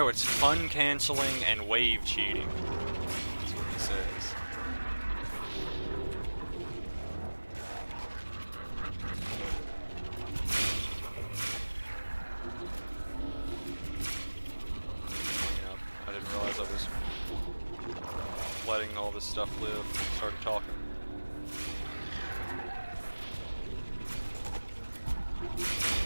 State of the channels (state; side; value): inverted; both; correlation -1.00